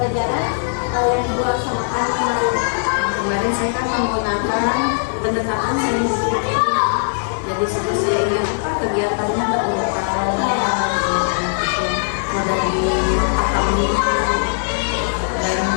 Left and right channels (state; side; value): silent; right; 58 dB below the other